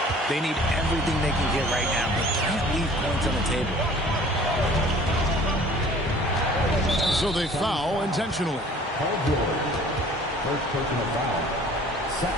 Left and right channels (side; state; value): both; normal; correlation 0.50